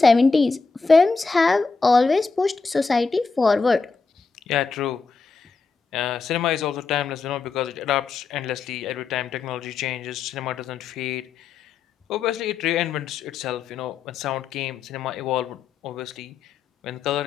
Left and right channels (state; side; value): quieter; right; 4.6 dB